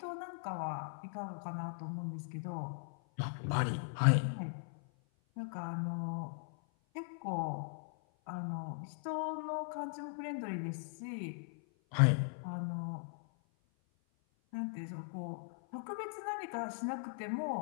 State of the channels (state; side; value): silent; right; 52 dB below the other